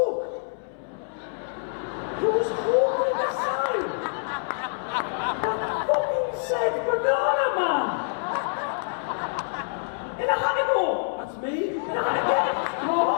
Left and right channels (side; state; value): right; silent; 61 dB below the other